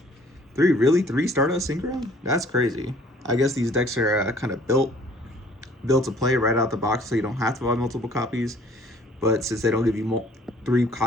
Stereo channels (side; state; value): both; normal; correlation 0.56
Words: 3. Really, 3 Stardust Synchron? That's crazy. I guess these decks are kind of built to play right out the box, so you don't have to buy multiple copies. But since they don't give you 3